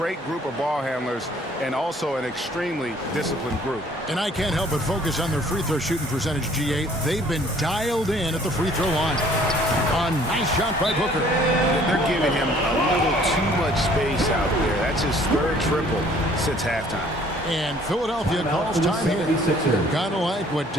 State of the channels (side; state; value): both; normal; correlation 0.57